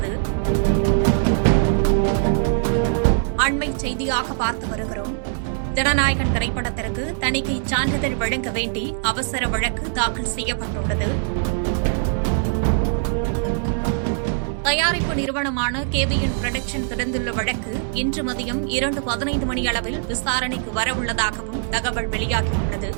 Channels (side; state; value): left; silent; 64 dB below the other